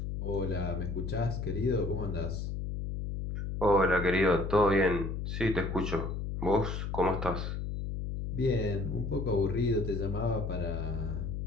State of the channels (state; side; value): noise; left; hum, 4 dB below the sound